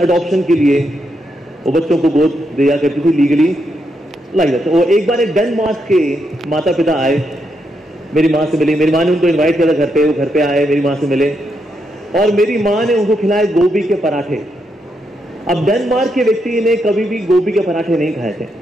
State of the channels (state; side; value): normal; both; correlation 0.81